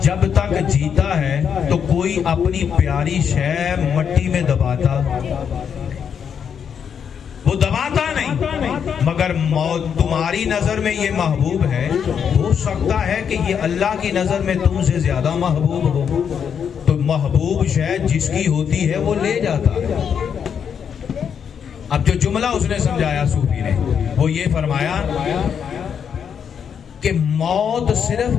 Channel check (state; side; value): quieter; right; 7.5 dB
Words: جب تک جیتا ہے تو کوئی اپنی پیاری شے مٹی میں دباتا، وہ دباتا نہیں، مگر موت تمہاری نظر میں یہ محبوب ہے، ہو سکتا ہے کہ یہ اللہ کی نظر میں تم سے زیادہ محبوب ہو، تو محبوب شے جس کی ہوتی ہے وہ لے جاتا ہے۔ اب جو جملہ اس نے سمجھایا صوفی نے وہ یہ فرمایا کہ موت